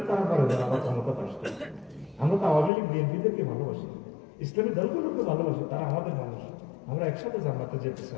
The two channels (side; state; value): right; drops out; at 2.7 s